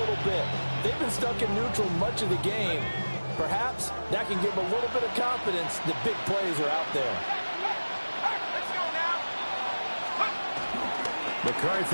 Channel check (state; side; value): inverted; both; correlation -1.00